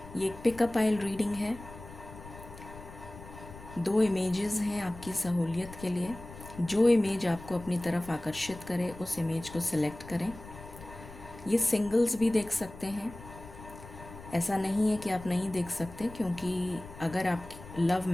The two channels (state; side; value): noise; left; rumble, 16 dB below the sound